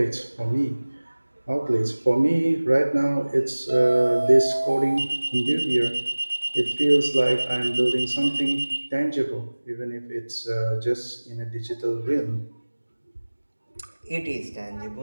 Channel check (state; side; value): inverted; both; correlation -1.00